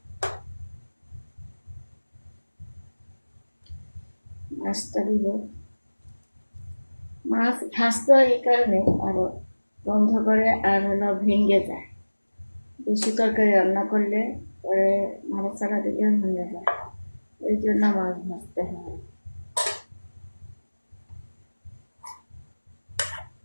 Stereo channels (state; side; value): inverted; both; correlation -1.00